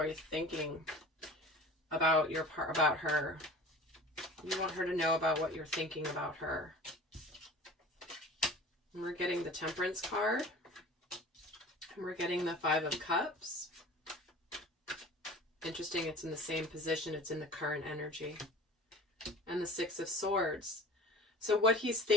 you're thinking about about her? You want her to know about what you're thinking about her. And we're getting the Temperance card. And we're getting the Five of Cups. Interesting, it's in the same position. It's in the current energy. And the Six of Swords. So what he's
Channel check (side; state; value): both; normal; correlation 0.40